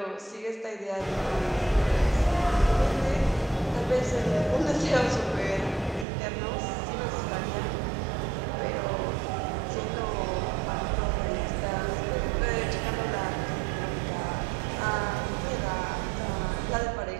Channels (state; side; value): drops out; left; at 6.1 s